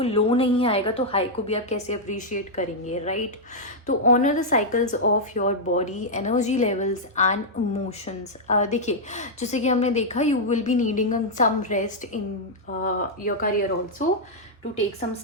लो नहीं आएगा तो हाई को भी आप कैसे अप्रिशिएट करेंगे, राइट? तो honour the cycles of your body, energy levels and emotions. देखिए जैसे कि हमने देखा, you will be needing some rest in your career also, to take some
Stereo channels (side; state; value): both; normal; correlation -0.04